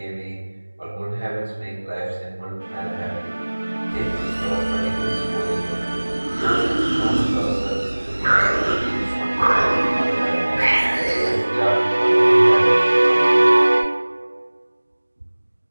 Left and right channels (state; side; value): inverted; both; correlation -1.00